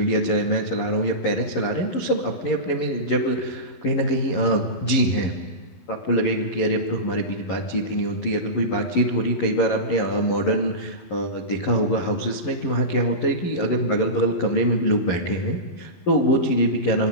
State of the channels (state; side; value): late; right; 11 ms